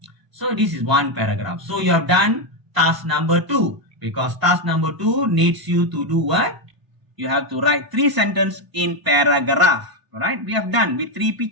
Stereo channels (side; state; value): left; late; 1.0 ms